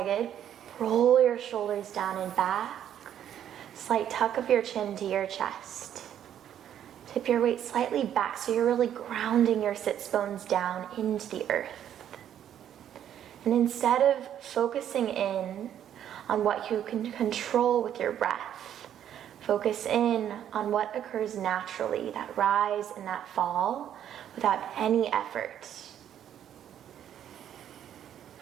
roll your shoulders down and back. Slight tuck of your chin to your chest. Tip your weight slightly back so you're really grounding your sits bones down into the earth. And instead of focusing in on what you can control with your breath, focus in on what occurs naturally, that rise and that fall, without any effort.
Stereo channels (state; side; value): quieter; left; 10.2 dB